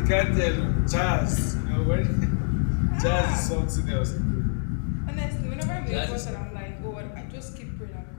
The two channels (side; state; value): right; silent; digital silence